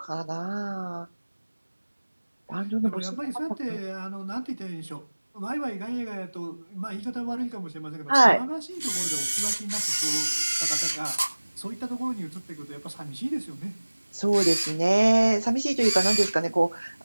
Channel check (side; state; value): both; inverted; correlation -1.00